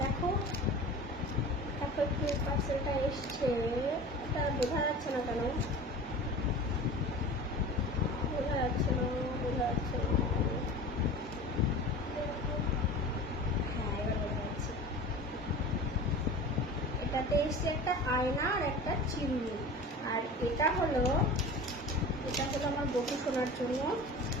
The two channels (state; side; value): normal; both; correlation 0.36